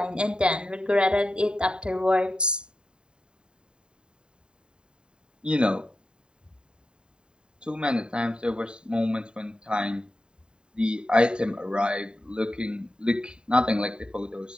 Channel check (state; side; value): late; left; 0.050 ms